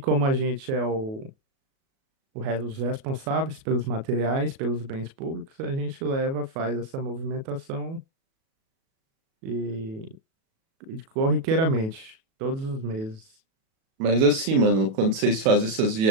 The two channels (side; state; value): left; late; 37 ms